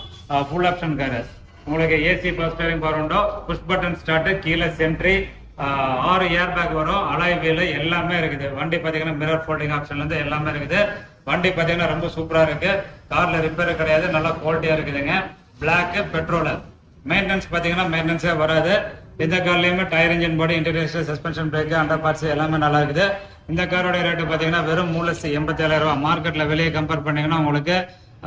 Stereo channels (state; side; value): identical; both; correlation 1.00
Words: Full option car. உங்களுக்கு ஏசி பவர் ஸ்டீரிங் பவர் உண்டோ, புஷ் பட்டன் ஸ்டார்ட், கீழே சென்ட்ரி, 6 ஏர் பேக் வரும். அலாய் வீல் எல்லாமே இருக்குது. வண்டி பாத்தீங்கன்னா மிரர் ஃபோல்டிங் ஆப்ஷன்ல இருந்து எல்லாமே இருக்குது. வண்டி பாத்தீங்கன்னா ரொம்ப சூப்பரா இருக்கு. கார்ல ரிப்பேர் கிடையாது, நல்லா குவாலிட்டியா இருக்குதுங்க. Black, petrol. மெயின்டெனன்ஸ் பாத்தீங்கன்னா மெயின்டெனன்ஸே வராது. இந்த கார்லயுமே tyre, engine body, interior, suspension, brake, under parts எல்லாமே நல்லா இருக்குது. இந்த காரோட ரேட்டு பாத்தீங்கன்னா வெறும் 3,87,000 ரூபாய். மார்க்கெட்ல வெளியே கம்பேர் பண்ணீங்கன்னா உங்களுக்கு